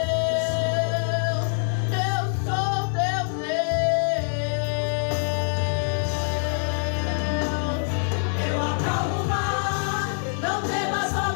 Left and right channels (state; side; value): silent; right; 62 dB below the other